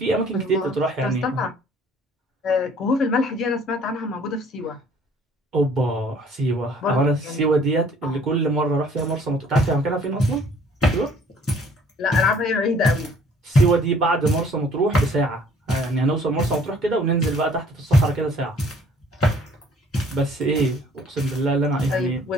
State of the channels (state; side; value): normal; both; correlation 0.57